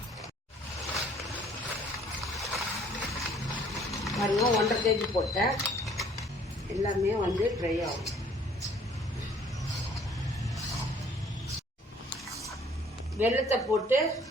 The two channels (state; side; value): normal; both; correlation 0.58